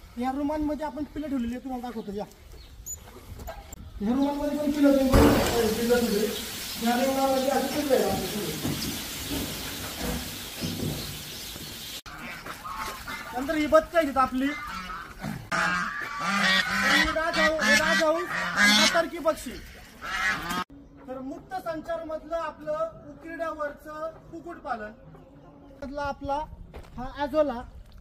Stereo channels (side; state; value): both; identical; correlation 1.00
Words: ह्या रूमांमध्ये आपण पिल्लं ठेवलेली आहे. तुम्हाला दाखवतो या ह्या रूमांमध्ये पण पिल्लं तुम्ही बघू शकता. पिल्लं ठेवली ह्या रूमामध्ये अशी पिल्लं आहे. नंतर ही बत्ती आहे आपली टर्की पक्षी. तर मुक्त संचार मधलं आपलं उकिरड्यावरचं कुक्कुटपालन मधला आपला हा ॲझोला,